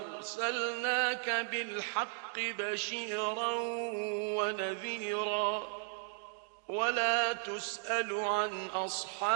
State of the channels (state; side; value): silent; left; 54 dB below the other